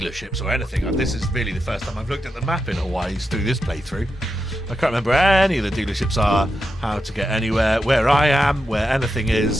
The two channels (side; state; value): both; normal; correlation 0.87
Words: or anything. This is really the first time I've looked at the map in Hawaii through this playthrough. I can't remember where any of the dealerships are, how to get anywhere, where I am, where anything